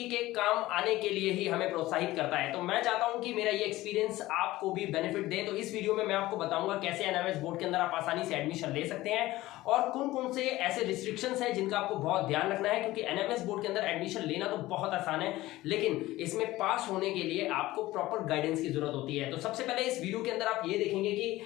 के काम आने के लिए ही हमें प्रोत्साहित करता है। तो मैं चाहता हूं कि मेरा ये एक्सपीरियंस आपको भी बेनिफिट दे। तो इस वीडियो में मैं आपको बताऊंगा कैसे एनएमएस बोर्ड के अंदर आप आसानी से एडमिशन ले सकते हैं और कौन कौन से ऐसे रिस्ट्रिक्शंस हैं जिनका आपको बहुत ध्यान रखना है, क्योंकि एनएमएस बोर्ड के अंदर एडमिशन लेना तो बहुत आसान है, लेकिन इसमें पास होने के लिए आपको प्रॉपर गाइडेंस की जरूरत होती है। तो सबसे पहले इस वीडियो के अंदर आप ये देखेंगे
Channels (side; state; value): right; quieter; 17.4 dB